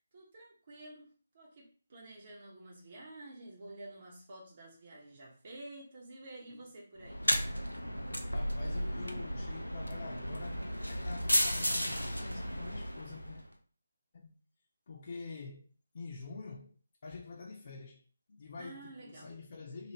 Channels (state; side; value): inverted; both; correlation -0.94